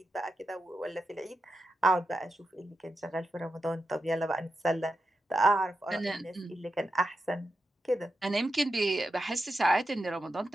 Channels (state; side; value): normal; both; correlation 0.88